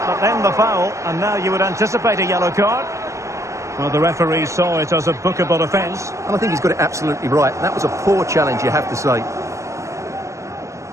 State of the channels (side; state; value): left; late; 0.15 ms